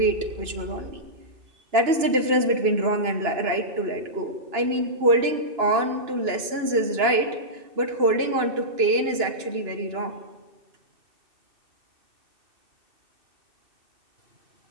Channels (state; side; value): late; left; 2.9 ms